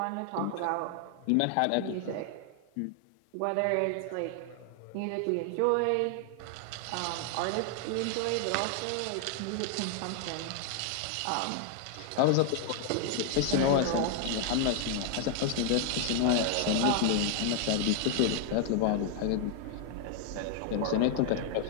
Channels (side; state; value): both; different; correlation 0.00